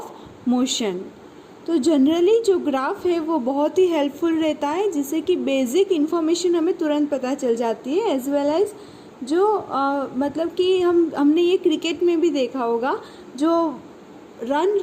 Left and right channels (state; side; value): identical; both; correlation 1.00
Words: मोशन। तो जनरली जो ग्राफ है वो बहुत ही हेल्पफुल रहता है, जिससे कि बेसिक इन्फॉर्मेशन हमें तुरंत पता चल जाती है, एज वेल एज जो मतलब कि हमने ये क्रिकेट में भी देखा होगा, जो रन